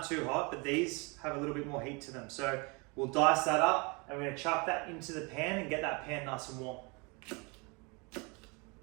too hot, but these have a little bit more heat to them. So we'll dice that up and we're going to chuck that into the pan and get that pan nice and warm.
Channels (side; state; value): left; quieter; 29.9 dB